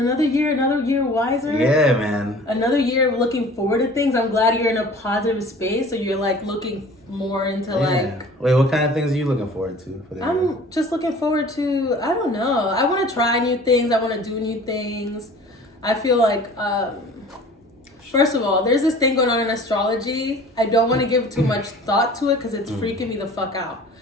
year wiser. Yeah, man. Another year of looking forward to things. I'm glad you're in a positive space, so you're like looking more into like. Wait, what kind of things are you looking forward to? I'm just looking forward to, I don't know. I want to try new things. I want to do new things. I feel like, first of all, there's this thing going on in astrology. I don't want to give too much thought to it because it's freaking me the fuck out.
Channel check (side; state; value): both; normal; correlation 0.46